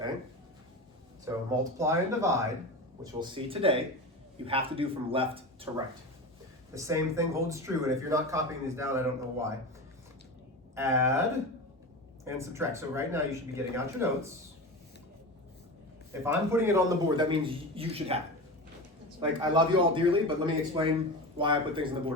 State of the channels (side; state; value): both; normal; correlation 0.26